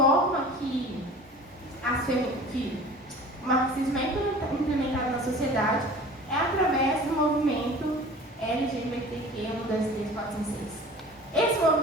que o marxismo é implementado na sociedade, é através do movimento LGBTQ 1, 2, 3, 4, 5, 6. Esse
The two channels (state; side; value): normal; both; correlation 0.42